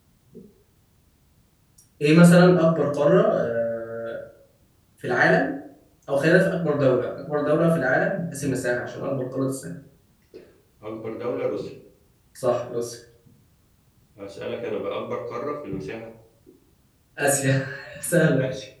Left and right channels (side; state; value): both; identical; correlation 1.00